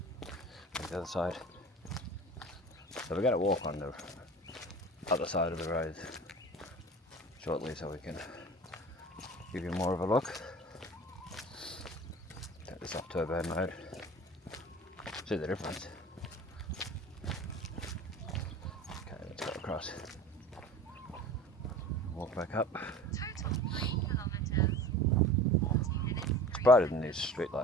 on the other side. So we're going to walk on the other side of the road shortly so we can give you more of a look. Take this off turbo mode. See the difference. Okay, let's go across. Walk back up. Total 9 kilometers, 40 minutes, 3 brighter than these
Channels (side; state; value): both; normal; correlation 0.39